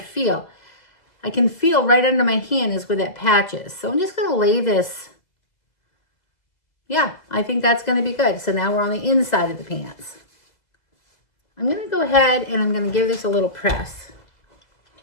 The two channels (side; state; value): right; late; 2.0 ms